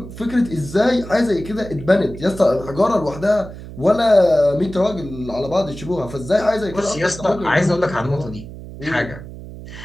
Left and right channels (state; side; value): noise; right; hum, 13 dB below the sound